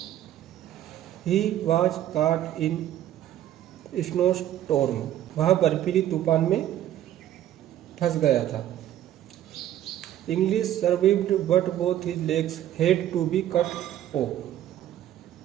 ही वॉज काट इन स्नो स्टॉर्म, वह बर्फीली तूफान में फंस गया था। Inglis survived but both his legs had to be cut off,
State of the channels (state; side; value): quieter; left; 12.2 dB